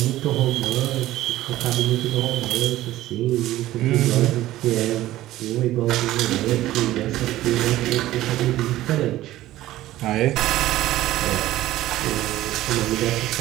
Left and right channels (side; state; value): left; quieter; 15.2 dB